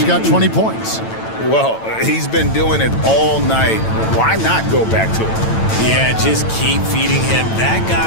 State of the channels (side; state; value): right; late; 9.0 ms